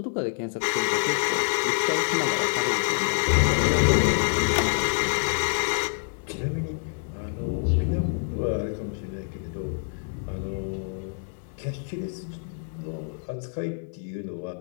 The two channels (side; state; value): right; silent; digital silence